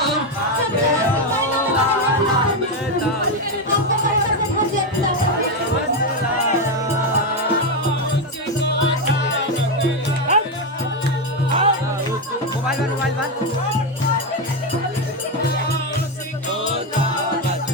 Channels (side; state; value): both; normal; correlation 0.08